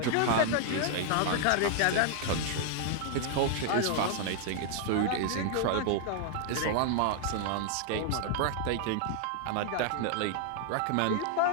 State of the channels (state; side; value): different; both; correlation 0.00